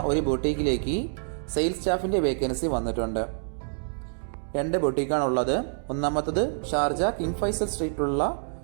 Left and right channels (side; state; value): left; silent; digital silence